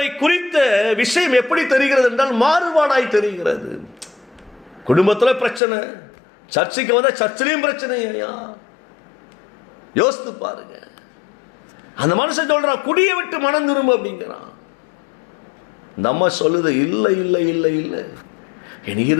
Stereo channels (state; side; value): drops out; right; at 5.6 s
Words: குறித்த விஷயம் எப்படி தெரிகிறது என்றால் மாறுபாடாய் தெரிகிறது. குடும்பத்தில் பிரச்சனை, சர்ச்சைக்கு வந்தா சர்ச்சிலையும் பிரச்சனை. யோசித்து பாருங்க. அந்த மனுஷன் சொல்றான், குடியை விட்டு மனம் திரும்ப அப்படிங்கிறான். இந்த அம்மா சொல்லுது, இல்லை இல்லை இல்லை இல்லை, என்